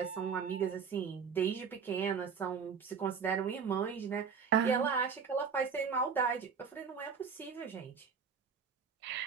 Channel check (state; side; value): quieter; left; 6.2 dB